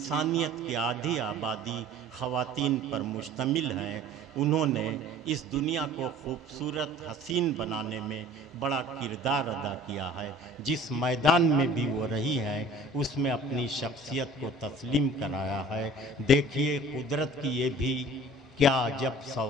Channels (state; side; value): normal; both; correlation 0.47